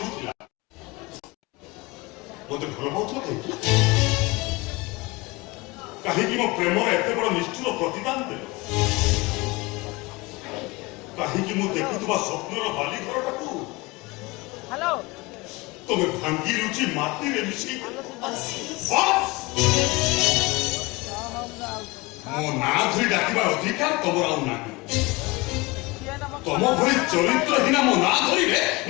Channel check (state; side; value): quieter; right; 23.3 dB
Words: ଥିଲା, ମତେ ଭଲ ପାଉଥିଲ କାହିଁକି? କାହିଁକି ମୋ ପ୍ରେମର ଏତେ ବଡ଼ ନିଷ୍ଠୁର ପ୍ରତିଦାନ ଦେଲ? କାହିଁକି ମୁଁ ଦେଖୁଥିବା ସ୍ୱପ୍ନର ବାଲି ଘରଟାକୁ ହ୍ୟାଲୋ ତମେ ଭାଙ୍ଗି ରୁଚି ମାଟିରେ ମିଶି ଆଶିଷ ମୋ ନାଁ ଧରି ଡାକିବାର ଅଧିକାର ତମର ଆଉ ନାହିଁ। ତମ ଭଳି ଚରିତ୍ରହୀନା ମୋ ନାଁ ଧରିଲେ